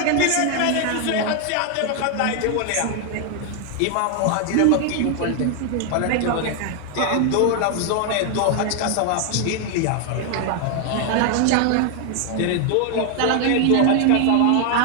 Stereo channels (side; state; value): both; different; correlation 0.00